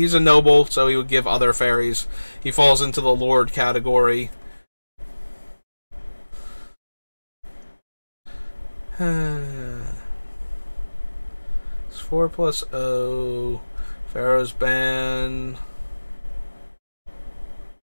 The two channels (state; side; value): inverted; both; correlation -1.00